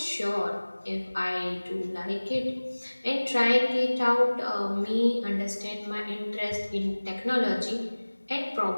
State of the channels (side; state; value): both; inverted; correlation -1.00